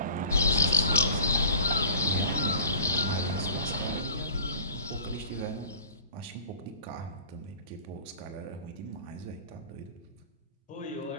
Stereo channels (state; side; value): inverted; both; correlation -0.44